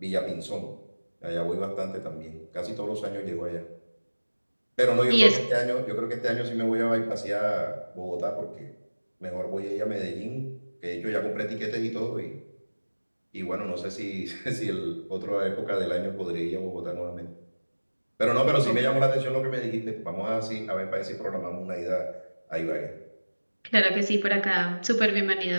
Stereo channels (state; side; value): inverted; both; correlation -1.00